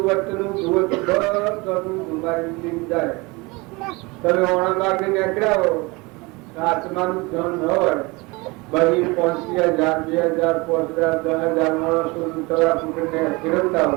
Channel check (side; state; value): left; quieter; 25.2 dB